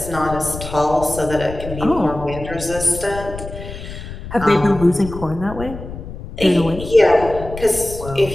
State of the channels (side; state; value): left; noise; rumble, 11 dB below the sound